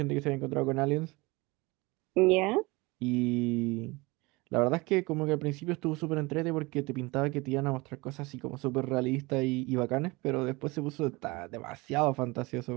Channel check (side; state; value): left; quieter; 24.0 dB